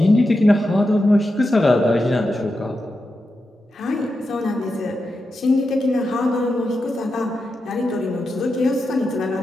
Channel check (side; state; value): both; normal; correlation 0.89